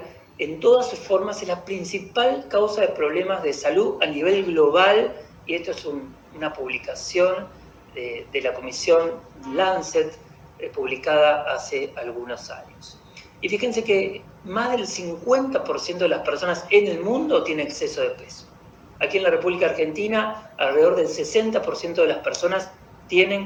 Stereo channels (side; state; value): both; identical; correlation 1.00